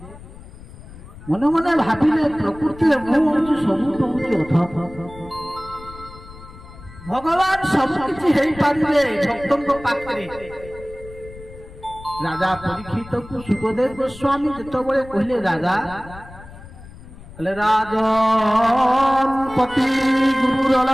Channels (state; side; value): noise; left; rumble, 17 dB below the sound